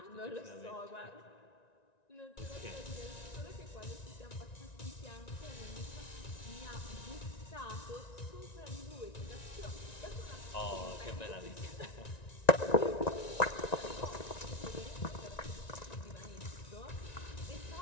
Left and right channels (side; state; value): right; late; 1.9 ms